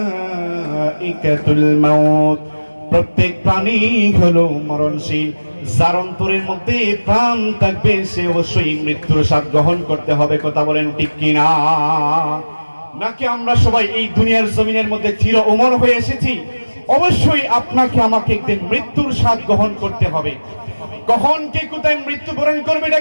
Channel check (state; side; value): inverted; both; correlation -1.00